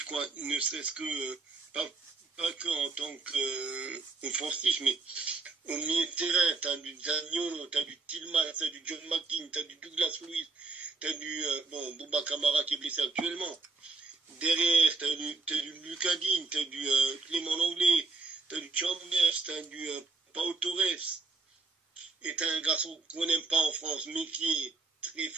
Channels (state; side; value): quieter; left; 4.0 dB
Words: quoi, ne serait-ce que pas que en tant qu'offensif, mais au milieu de terrain, t'as du Zaniolo, t'as du Tillman, t'as du John McGinn, t'as du Douglas Luiz, t'as du Bouba Kamara qui est blessé actuellement. Derrière, t'as du Lucas Digne, t'as du Clément Langlais, t'as du Chambers, t'as du Pau Torres. Et t'as un garçon qu'on n'aime pas en France, mais qui est très